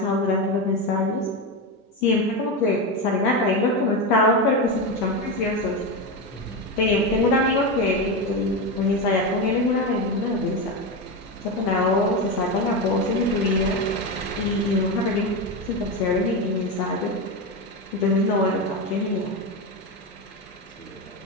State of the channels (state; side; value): normal; both; correlation 0.15